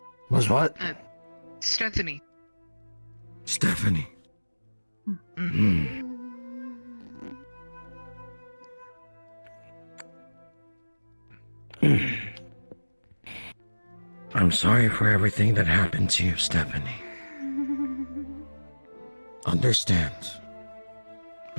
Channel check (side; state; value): both; inverted; correlation -1.00